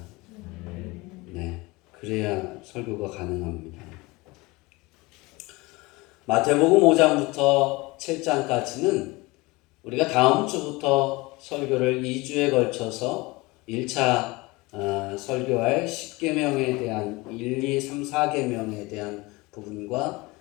네, 그래야 설교가 가능합니다. 마태복음 5장부터 7장까지는 우리가 다음 주부터 설교를 2주에 걸쳐서 1차 설교할 10계명에 대한 1, 2, 3, 4계명에 대한 부분과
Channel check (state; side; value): quieter; right; 23.2 dB